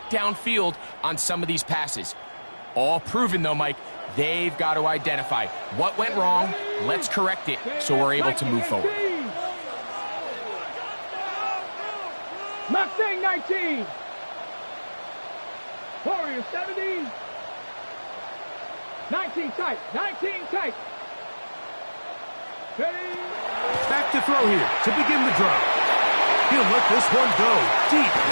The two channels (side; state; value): both; inverted; correlation -1.00